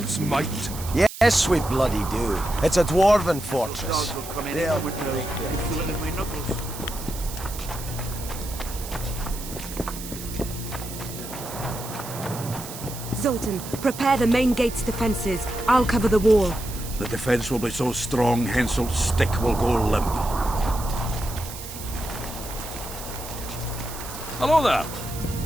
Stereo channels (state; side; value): noise; right; hiss, 11 dB below the sound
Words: might. Yes, we bloody do. It's a dwarven fortress. Dogs will come in They'll with break and feel it in my knuckles. Zoltan, prepare the main gate's defenses. I'll cover the wall. The defense will be so strong, Henselt's stick will go limp. Hello there.